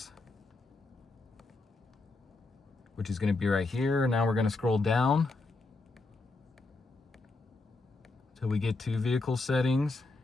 which is gonna be right here. Now we're gonna scroll down till we get to vehicle settings,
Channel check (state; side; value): quieter; right; 3.5 dB